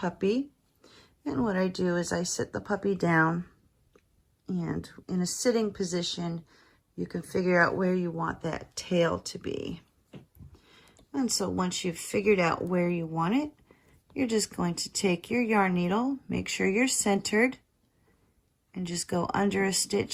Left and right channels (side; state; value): both; identical; correlation 1.00